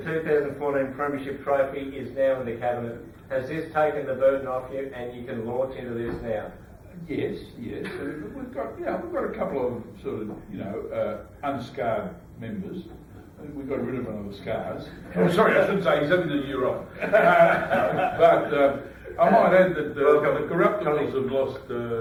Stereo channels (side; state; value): both; identical; correlation 1.00